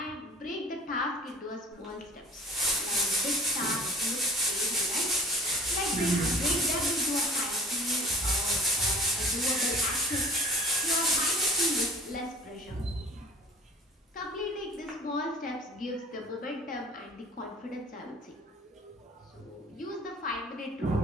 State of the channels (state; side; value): normal; both; correlation 0.46